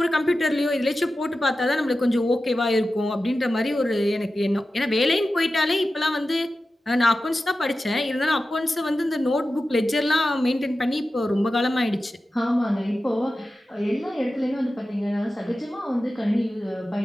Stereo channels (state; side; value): normal; both; correlation 0.93